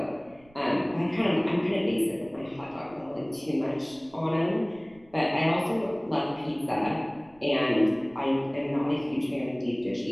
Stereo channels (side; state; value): right; noise; rumble, 28 dB below the sound